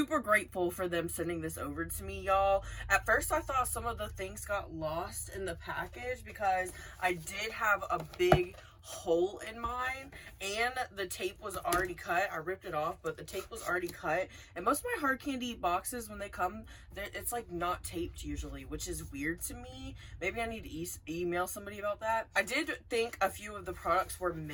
grateful for them sending this over to me, y'all. At first, I thought some of the things got lost in the package because I did have a big hole in mine and the tape was already cut. I ripped it off, but the tape was already cut, and most of my hard candy boxes, when they come, it's like not taped usually, which is weird to me. Maybe I need to email somebody about that. I did think a few of the products were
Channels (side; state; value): both; identical; correlation 1.00